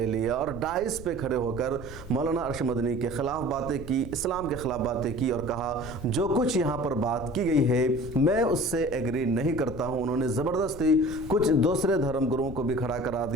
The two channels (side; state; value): left; noise; rumble, 14 dB below the sound